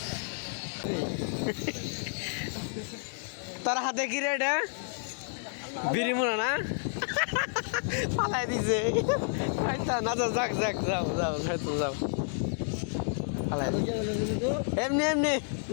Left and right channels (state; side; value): silent; right; digital silence